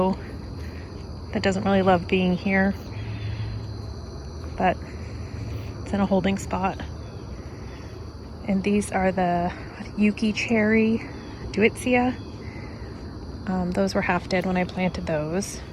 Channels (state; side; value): identical; both; correlation 1.00